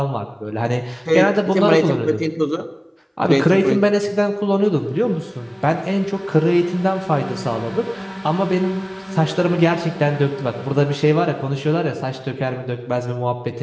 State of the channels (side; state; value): both; identical; correlation 1.00